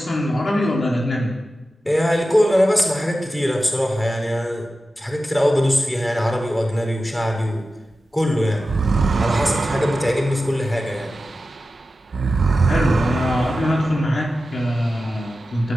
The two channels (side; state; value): both; normal; correlation 0.93